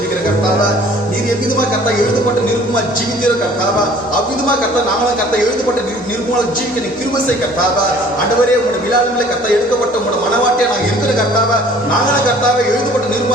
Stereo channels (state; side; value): normal; both; correlation 0.52